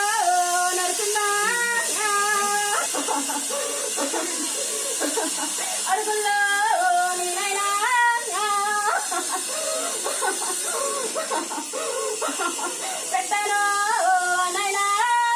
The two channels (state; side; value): identical; both; correlation 1.00